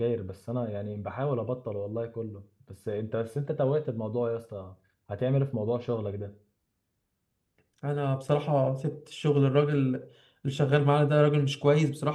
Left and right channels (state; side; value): identical; both; correlation 1.00